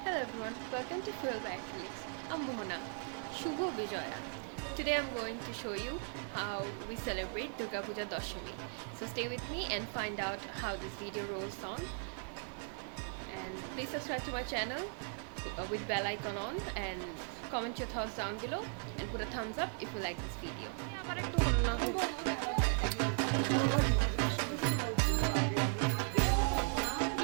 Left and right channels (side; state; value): left; silent; 53 dB below the other